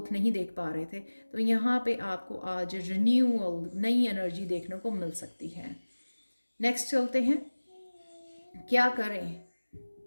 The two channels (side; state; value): both; inverted; correlation -1.00